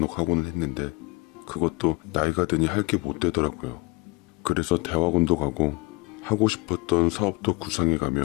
하고는 했는데 그것도 나이가 드니 할 게 못 되더라고요. 그래서 대학원도 가고 하고 싶었던 사업도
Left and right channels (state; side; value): quieter; right; 24.8 dB